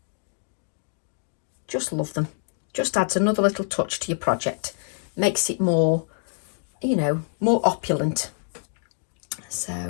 Just love them. Just adds another little touch to your project. Makes it more, you know, more opulent. So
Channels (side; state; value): right; silent; digital silence